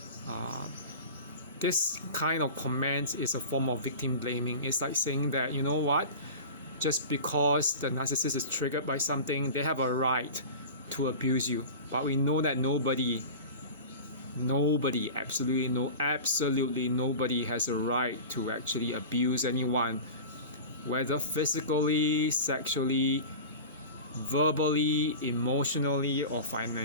this kind of comment is a form of victim blaming. It's like saying that, you know what, just because the narcissist is triggered by something, they have a right to abuse you. But we know that nobody, absolutely nobody has a right to actually abuse anyone, whether physically, sexually, verbally, emotionally, or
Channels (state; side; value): inverted; both; correlation -0.33